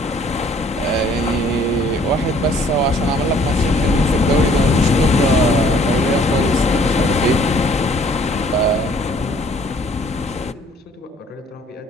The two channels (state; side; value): normal; both; correlation 0.58